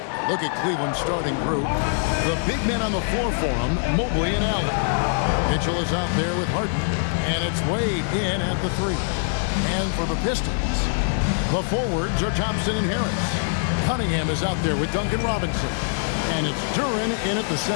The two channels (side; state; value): right; silent; digital silence